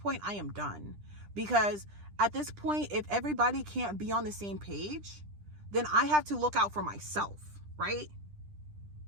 I am done. Because at this point, if everybody can't be on the same page, then I have to look out for myself, right?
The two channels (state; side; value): late; left; 10 ms